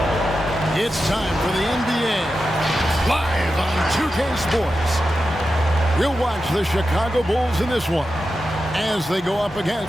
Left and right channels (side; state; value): both; normal; correlation 0.90